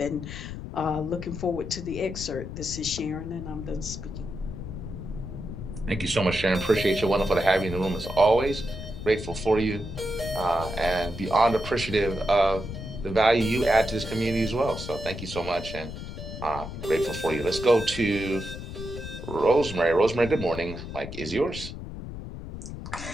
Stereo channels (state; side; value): noise; left; rumble, 9 dB below the sound